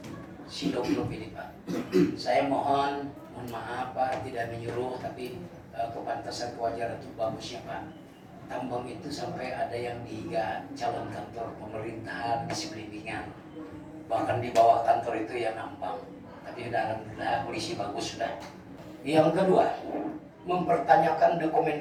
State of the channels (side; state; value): both; identical; correlation 1.00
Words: Sidoglup ini Pak. Saya mohon maaf Pak, tidak menyuruh, tapi kepantasan kewajaran itu bagusnya Pak. Tambang itu sampai ada yang dihiga calon kantor pemerintahan di sekelilingan, bahkan di bawah kantor itu ya nambang. Tapi udah alhamdulillah polisi bagus sudah. Yang kedua, mempertanyakan dokumen